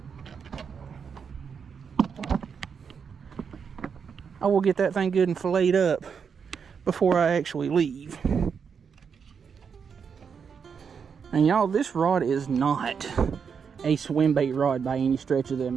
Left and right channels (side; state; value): left; quieter; 6.5 dB